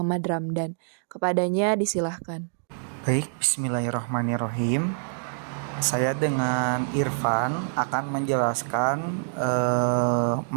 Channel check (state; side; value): silent; left; digital silence